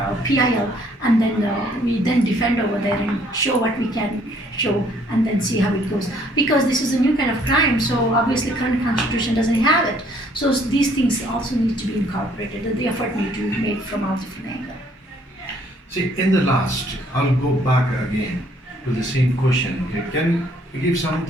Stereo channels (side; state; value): both; normal; correlation 0.63